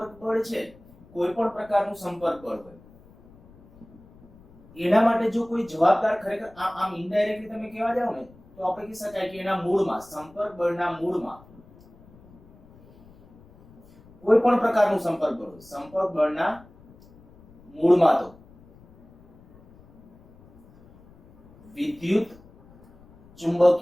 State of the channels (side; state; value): left; noise; rumble, 25 dB below the sound